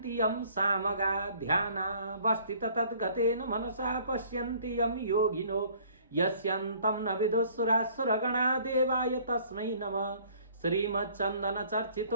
यं सामगा ध्यानावस्थित तद्गतेन मनसा पश्यन्ति यं योगिनो यस्यन्तं न विदुःसुरासुरगणा देवाय तस्मै नमः। श्रीमच्चन्दन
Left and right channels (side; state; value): both; inverted; correlation -0.56